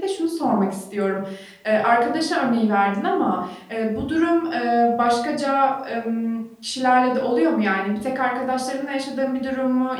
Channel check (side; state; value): both; identical; correlation 1.00